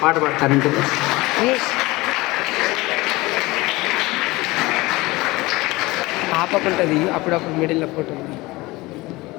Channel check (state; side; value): quieter; right; 21.1 dB